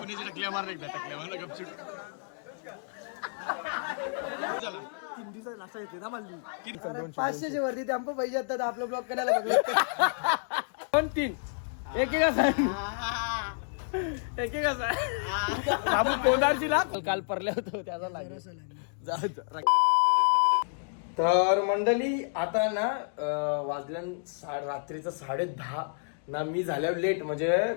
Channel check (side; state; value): right; silent; digital silence